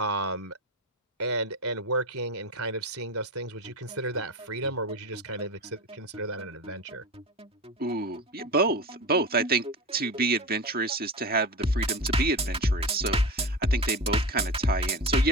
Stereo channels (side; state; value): both; normal; correlation 0.25